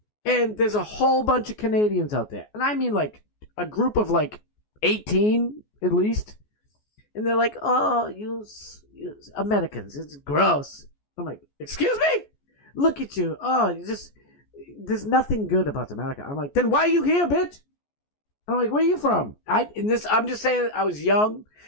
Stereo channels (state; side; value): late; right; 14 ms